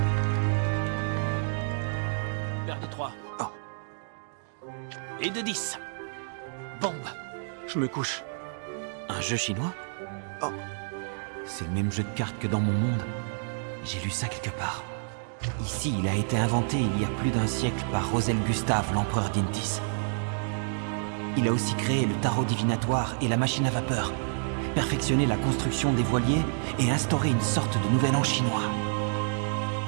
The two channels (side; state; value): left; silent; digital silence